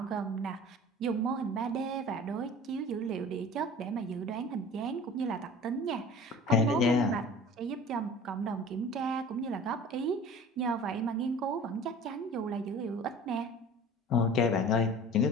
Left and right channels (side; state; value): both; normal; correlation 0.42